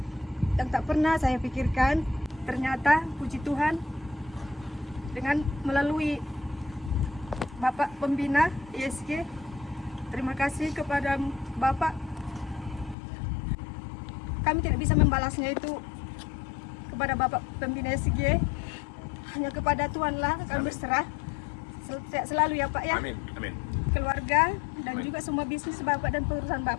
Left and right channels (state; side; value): drops out; right; at 13.0 s